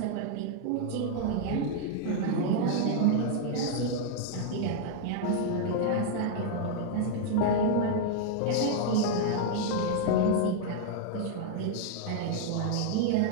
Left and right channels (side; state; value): both; different; correlation 0.00